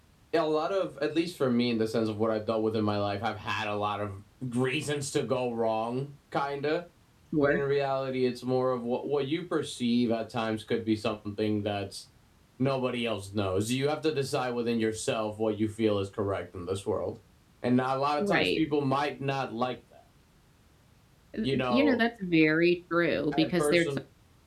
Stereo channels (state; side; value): identical; both; correlation 1.00